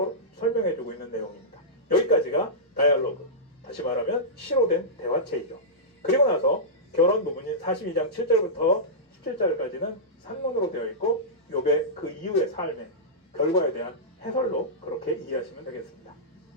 설명해주고 있는 내용입니다. 여기까지가 다이얼로그, 다시 말하면 시로 된 대화체이죠. 그리고 나서 결론 부분인 42장 7절부터 17절까지는 산문으로 되어 있고 욥의 그 이후의 삶의 결과에 대한 해설로 그렇게 이해하시면 되겠습니다.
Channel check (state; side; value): normal; both; correlation -0.14